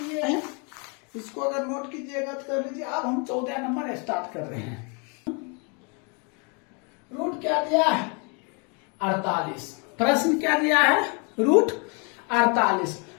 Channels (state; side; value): quieter; right; 34.5 dB